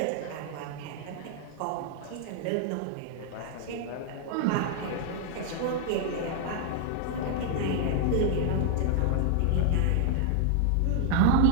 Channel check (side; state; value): both; different; correlation 0.00